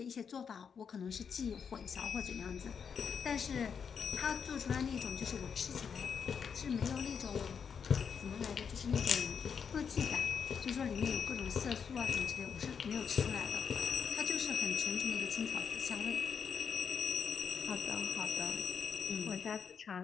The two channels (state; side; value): quieter; right; 6.7 dB